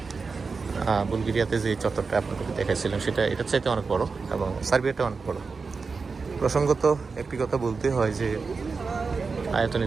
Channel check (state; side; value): quieter; left; 4.7 dB